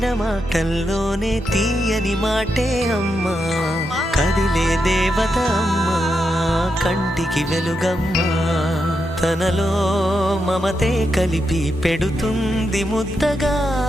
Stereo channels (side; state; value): both; normal; correlation 0.85